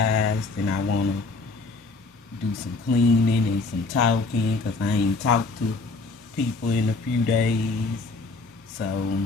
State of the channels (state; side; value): quieter; right; 3.7 dB